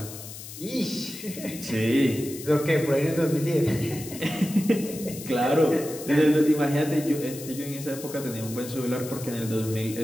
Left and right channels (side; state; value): left; noise; hiss, 13 dB below the sound